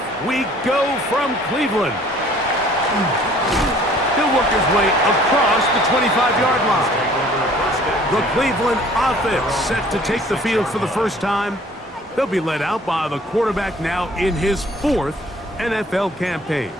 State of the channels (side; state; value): both; normal; correlation 0.54